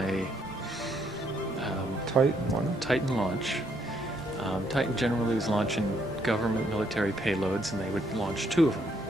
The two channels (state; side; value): normal; both; correlation 0.72